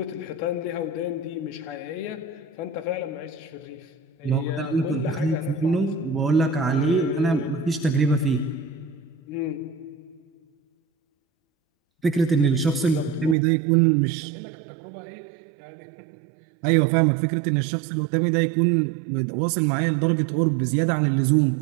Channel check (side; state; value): left; drops out; at 13.4 s